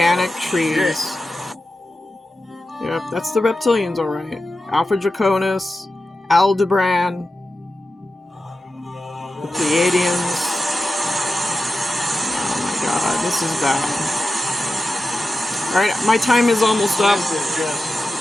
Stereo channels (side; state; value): both; normal; correlation 0.92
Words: trees. Yep, that's the reptilians, alright. Alpha Draconis, Aldebaran, the Pleiadians. Oh my god, this is bad. Alright, my time is almost up.